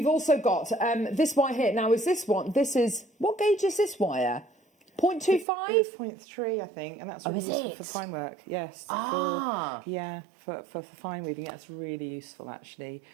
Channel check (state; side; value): drops out; left; at 5.5 s